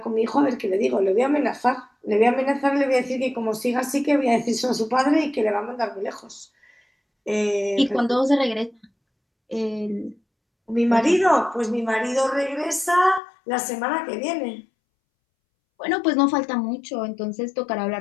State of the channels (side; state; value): right; drops out; at 13.2 s